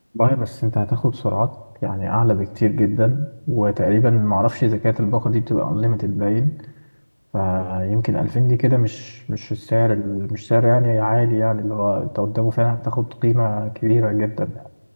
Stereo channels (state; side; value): inverted; both; correlation -1.00